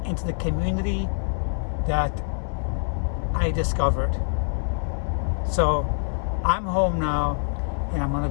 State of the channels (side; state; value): right; silent; 61 dB below the other